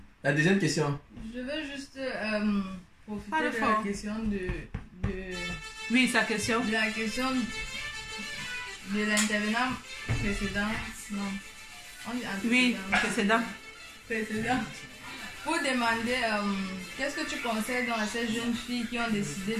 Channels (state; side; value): identical; both; correlation 1.00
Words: deuxième question. Je veux juste profiter de la question de... Oui, sa question. De la question de l'intervenant précédent. Non. Oui, précédent. Pour demander qu'est-ce que tu conseilles dans ces jeunes filles qui ont décidé